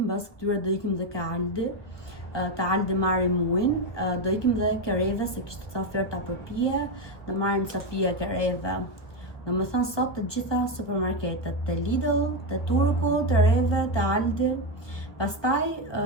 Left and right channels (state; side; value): late; right; 1.2 ms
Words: këtyre do ikim dhe ke Aldi. Të Aldi marrim muin, do ikim dhe kereve se kishte ca oferta për pije, do marrim ca pije kereve. Do më thënë sot të gjitha supermarketet, të Lidl, të Turku, të Reve, të Aldi. Pastaj